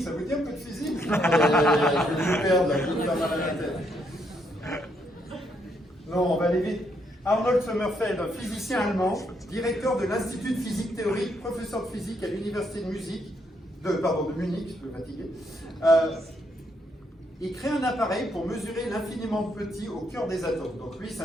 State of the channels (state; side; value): normal; both; correlation 0.75